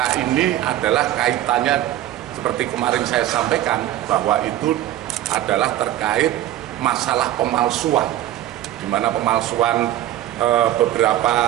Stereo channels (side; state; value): left; quieter; 13.4 dB